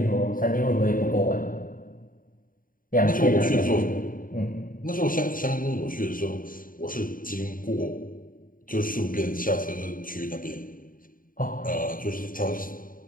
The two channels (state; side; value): late; right; 0.40 ms